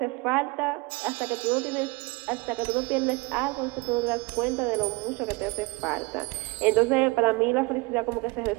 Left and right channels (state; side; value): quieter; left; 25.4 dB